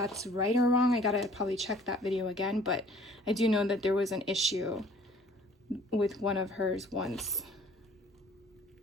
right or wrong. I gotta probably check that video again, but I do know that there was an issue with one of hers once.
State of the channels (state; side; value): normal; both; correlation 0.53